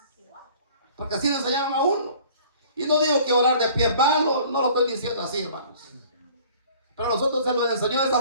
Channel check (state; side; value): inverted; both; correlation -0.51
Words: porque así le enseñaron a uno. Y no digo que orar de pie es malo, no lo estoy diciendo así, hermanos, pero a nosotros se nos enseñó de esa